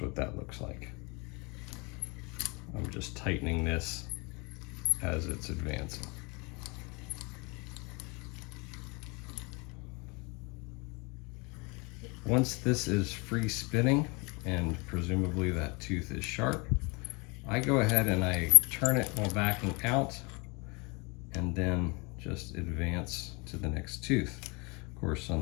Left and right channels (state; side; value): quieter; right; 28.8 dB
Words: what that looks like. I'm just tightening this as it's advancing. Once this is free spinning, and presumably that tooth is sharp, I go ahead and I turn it while backing out, and then just advance to the next tooth. Of course, on